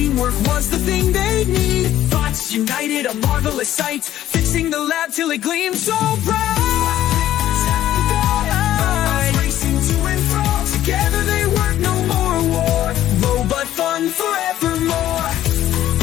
was the thing they need. Bots united, a marvelous sight, fixing the lab till it gleamed so bright. Racing to and fro. Together they work, no more war. Robot fun forevermore.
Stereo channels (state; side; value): quieter; right; 12.8 dB